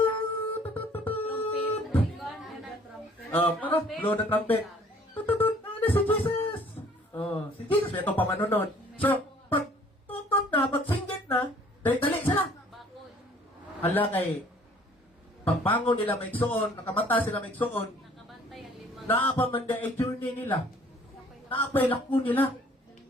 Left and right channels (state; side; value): normal; both; correlation 0.56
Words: blow the trumpet. Ano si Jesus? Oh, si Jesus, ito pamanunon. So, pag tutot na, pag singgit na, dali sila. Hala kay, pagbangon nila may suon, nakamata sila may suon, Nakabantay ang lima. naapamanda ay journey nila. Naapay lakon nila.